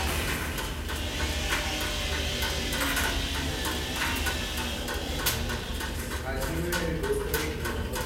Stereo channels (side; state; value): both; identical; correlation 1.00